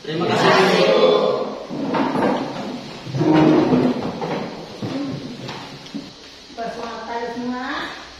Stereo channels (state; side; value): identical; both; correlation 1.00